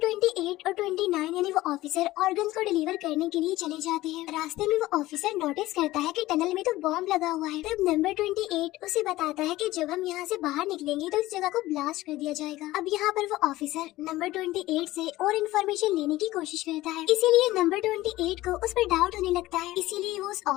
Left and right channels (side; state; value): right; quieter; 17.1 dB